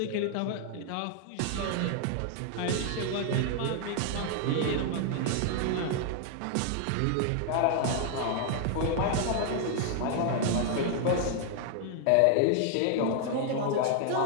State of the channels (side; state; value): both; different; correlation 0.00